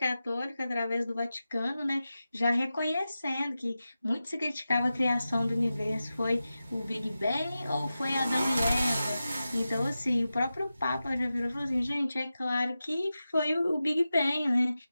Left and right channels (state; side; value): inverted; both; correlation -0.93